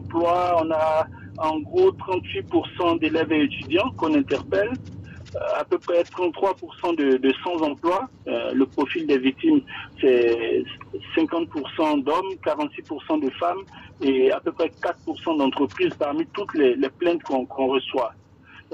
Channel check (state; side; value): identical; both; correlation 1.00